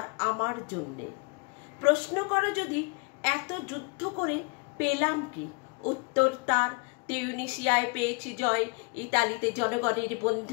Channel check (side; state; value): right; quieter; 32.3 dB